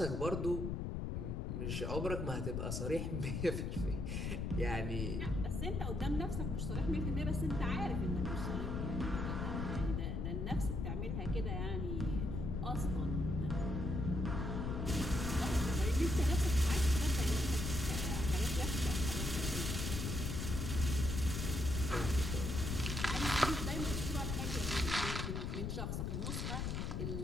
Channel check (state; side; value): noise; left; rumble, 1 dB below the sound